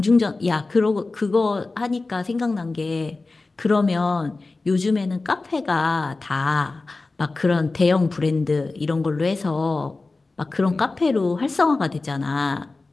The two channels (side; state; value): right; quieter; 3.5 dB